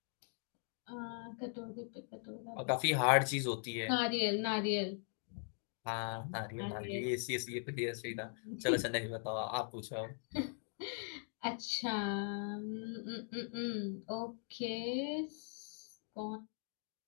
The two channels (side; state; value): right; silent; 51 dB below the other